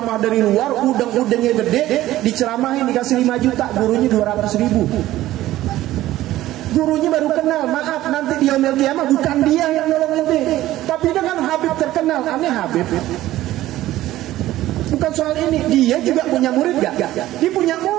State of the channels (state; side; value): quieter; left; 15.1 dB